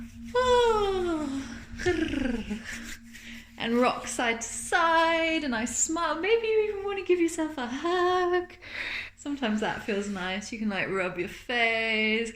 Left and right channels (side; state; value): both; identical; correlation 1.00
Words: And rock side to side, and I smile. Maybe you even want to give yourself a hug. Sometimes that feels nice. You can like rub your face,